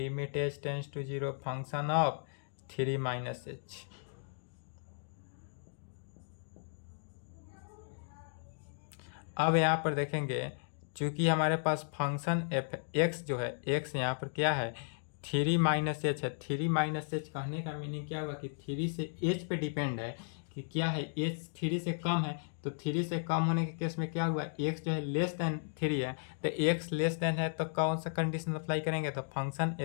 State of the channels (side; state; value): right; silent; digital silence